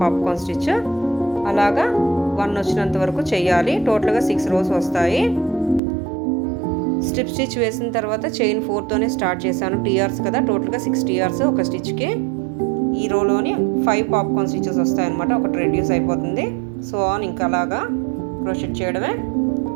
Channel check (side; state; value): left; drops out; at 5.8 s